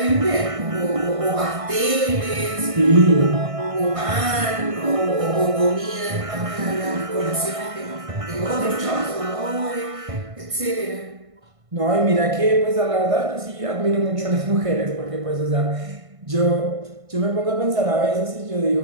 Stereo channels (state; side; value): late; left; 1.5 ms